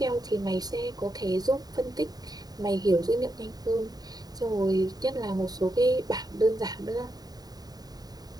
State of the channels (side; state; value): left; late; 0.19 ms